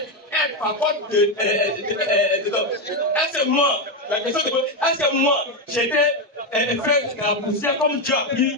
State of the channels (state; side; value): normal; both; correlation 0.08